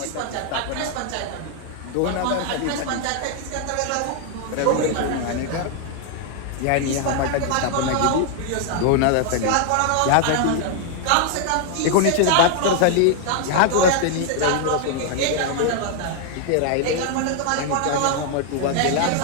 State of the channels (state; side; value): different; both; correlation 0.00